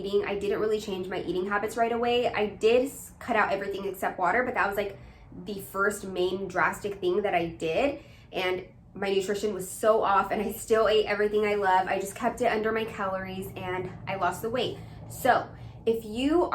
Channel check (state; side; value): identical; both; correlation 1.00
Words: I didn't really change my eating habits right away. I did cut out everything except water, but that was like the first main drastic thing that I did. And my nutrition was so off and I still ate everything I love. I just kept it under my calories and I lost the weight. So if you